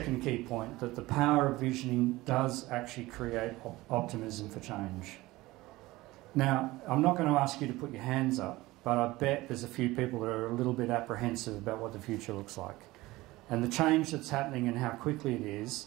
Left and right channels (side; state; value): left; quieter; 19.1 dB